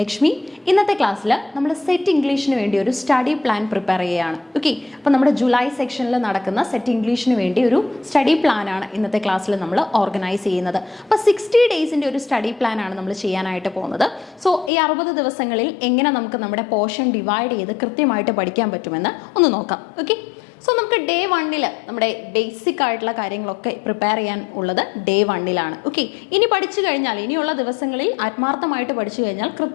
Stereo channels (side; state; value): right; drops out; at 14.7 s